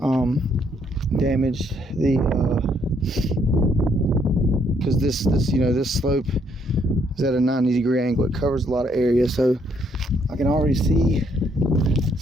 damaged the because this slope is at a 90-degree angle. It covers a lot of area, so I can already see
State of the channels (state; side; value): normal; both; correlation 0.70